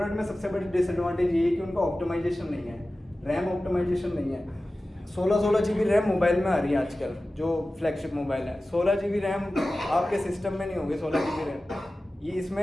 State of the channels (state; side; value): normal; both; correlation 0.96